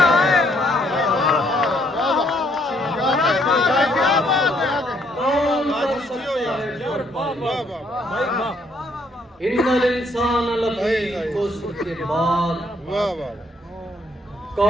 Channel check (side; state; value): both; normal; correlation 0.69